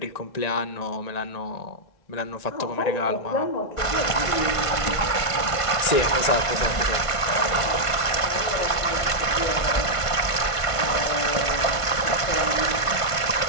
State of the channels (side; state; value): right; late; 1.5 ms